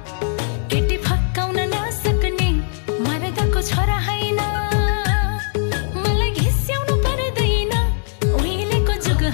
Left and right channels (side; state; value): right; silent; 65 dB below the other